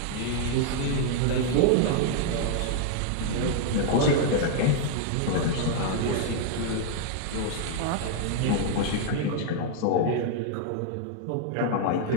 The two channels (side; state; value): both; different; correlation -0.01